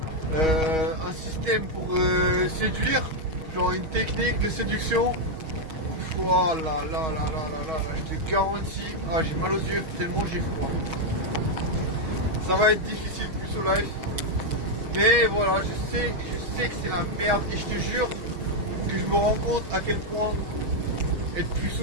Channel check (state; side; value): late; left; 6.3 ms